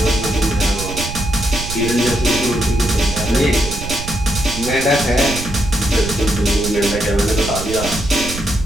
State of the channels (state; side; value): noise; right; rumble, 8 dB below the sound